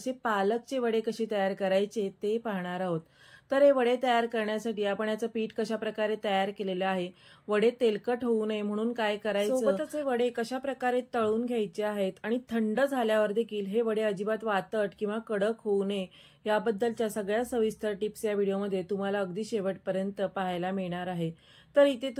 पालकचे वडे कसे तयार करायचे ते पाहणार आहोत. तर हे वडे तयार करण्यासाठी आपण याचं पीठ कशा प्रकारे तयार केलेलं आहे, वडे तेलकट होऊ नये म्हणून काय करायचं, सोबतच हे वडे कशा प्रकारे तळून घ्यायचे आहेत आणि थंड झाल्यावर देखील हे वडे अजिबात वातट किंवा कडक होऊ नये याबद्दलच्या सगळ्या सविस्तर टिप्स या व्हिडिओमध्ये तुम्हाला अगदी शेवटपर्यंत पाहायला मिळणार आहे. तर इथे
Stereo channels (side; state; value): both; identical; correlation 1.00